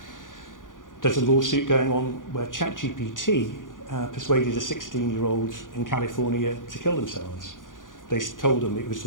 There's a lawsuit going on where ChatGPT persuaded a 16-year-old in California to kill themselves. They told them it was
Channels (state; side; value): late; right; 0.89 ms